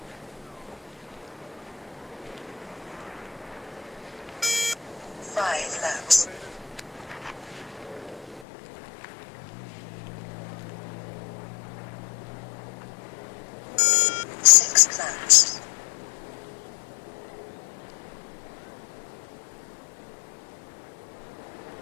Five laps. Six laps.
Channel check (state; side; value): drops out; right; at 8.5 s